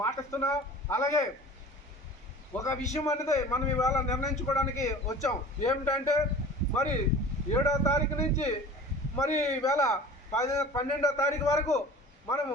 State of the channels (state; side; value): normal; both; correlation 0.41